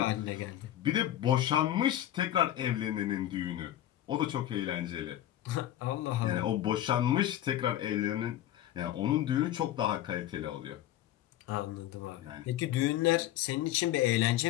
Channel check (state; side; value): quieter; right; 12.8 dB